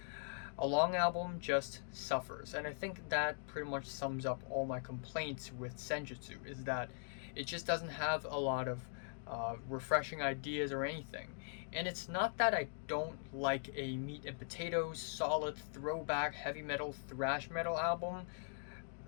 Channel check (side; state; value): right; silent; digital silence